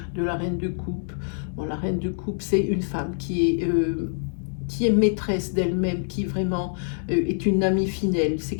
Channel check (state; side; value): silent; right; 62 dB below the other